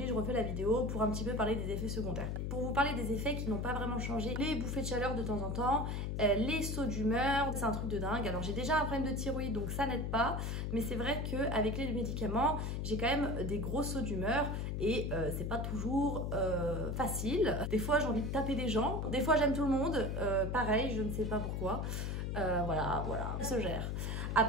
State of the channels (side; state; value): left; noise; hum, 1 dB below the sound